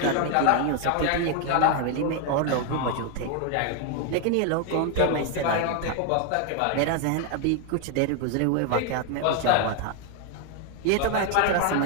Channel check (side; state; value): both; different; correlation 0.01